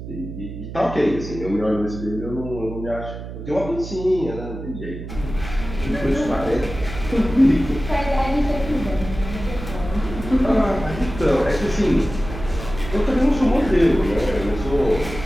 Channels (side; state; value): right; noise; hum, 10 dB below the sound